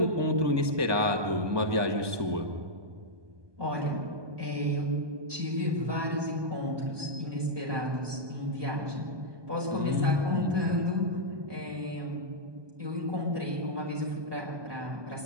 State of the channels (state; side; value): late; left; 1.2 ms